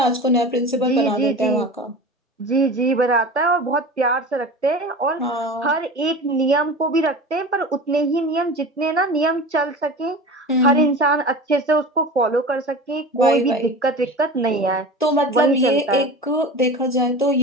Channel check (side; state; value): both; normal; correlation 0.33